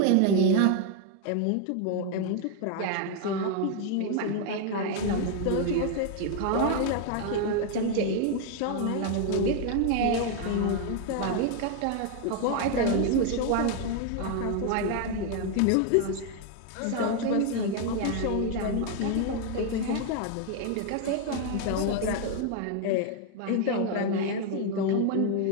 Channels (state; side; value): different; both; correlation 0.01